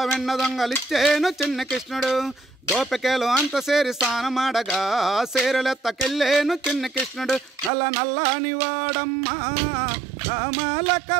వెన్న దొంగలిచ్చేను చిన్న కృష్ణుడు గోపికలు అంత సేరి స్నానమాడగా సేరలెత్తకెళ్ళేను చిన్న కృష్ణుడు నల్ల నల్లని వాడమ్మా నామాల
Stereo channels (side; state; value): left; drops out; at 7.7 s